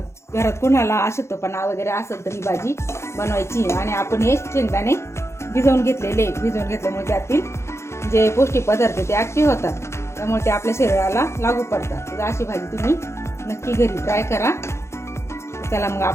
घरात कोणाला अशक्तपणा वगैरे असेल तर ही भाजी बनवायची। आणि आपण हे शेंगदाणे भिजवून घेतल्यामुळे त्यातील जे पौष्टिक पदार्थ ते ऍक्टिव्ह होतात, त्यामुळे ते आपल्या शरीराला लागू पडतात। तर अशी भाजी तुम्ही नक्की घरी ट्राय करा। चला मग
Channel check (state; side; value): late; right; 0.13 ms